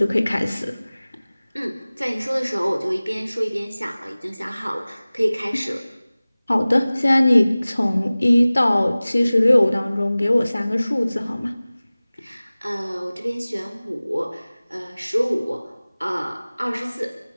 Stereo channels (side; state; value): both; inverted; correlation -0.99